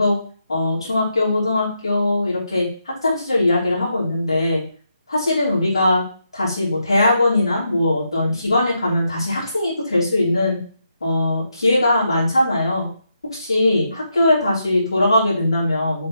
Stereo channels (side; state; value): both; inverted; correlation -0.82